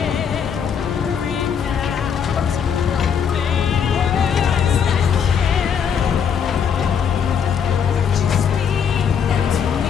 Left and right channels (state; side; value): quieter; right; 7.4 dB